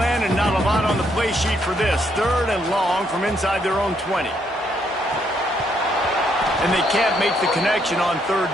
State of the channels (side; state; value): both; normal; correlation 0.73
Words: and not a lot on the play sheet for this. 3rd and long from inside their own 20. And they can't make the connection on